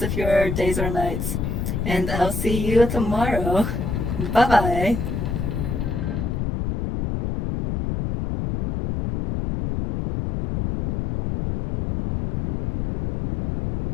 of your days or nights. And I'll see you tomorrow. Bye bye.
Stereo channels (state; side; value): noise; left; rumble, 2 dB below the sound